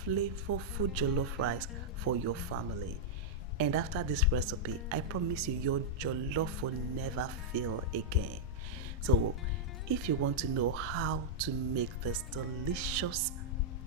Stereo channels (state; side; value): normal; both; correlation -0.07